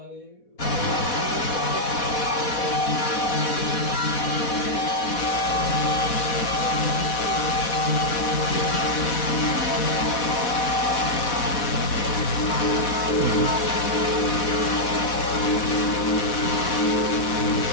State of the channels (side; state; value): right; late; 4.1 ms